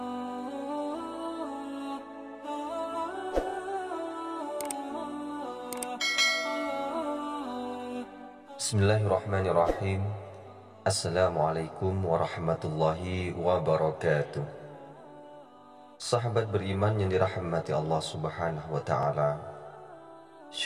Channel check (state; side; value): identical; both; correlation 1.00